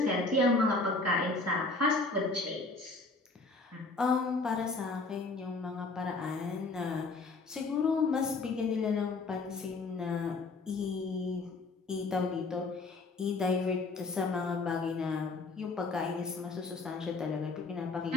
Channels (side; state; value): right; quieter; 3.6 dB